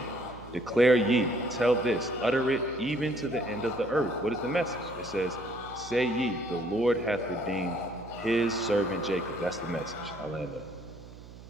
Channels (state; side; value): noise; right; hum, 17 dB below the sound